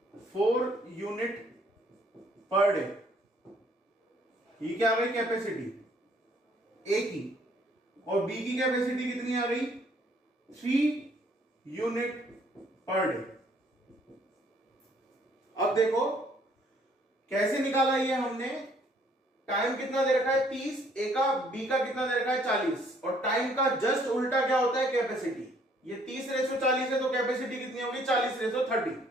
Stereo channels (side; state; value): both; normal; correlation 0.63